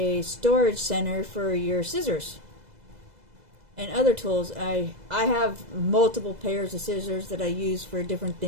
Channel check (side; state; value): left; late; 2.0 ms